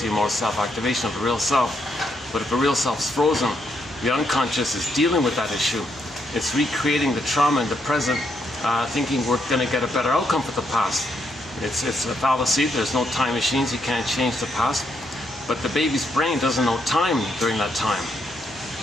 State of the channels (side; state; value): both; normal; correlation 0.77